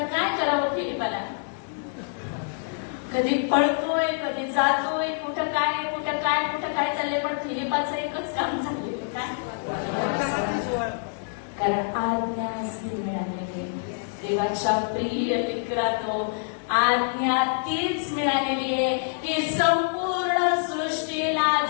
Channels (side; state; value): right; silent; digital silence